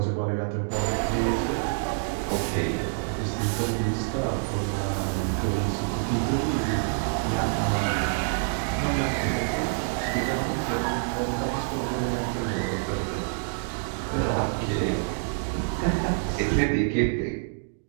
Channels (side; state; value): left; silent; digital silence